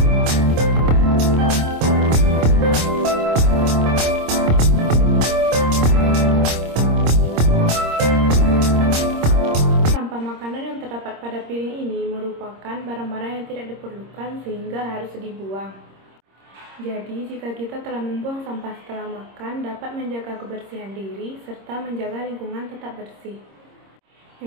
Pada piring ini merupakan barang-barang yang tidak diperlukan sehingga harus dibuang. Jadi, jika kita telah membuang sampah setelah makan, dapat menjaga kebersihan diri serta menjaga lingkungan tetap bersih.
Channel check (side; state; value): left; late; 26 ms